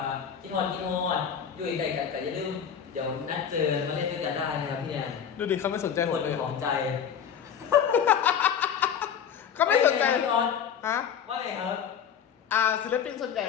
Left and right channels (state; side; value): quieter; right; 8.1 dB